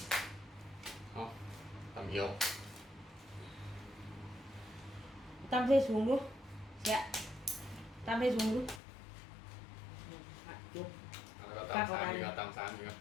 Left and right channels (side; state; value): right; drops out; at 8.8 s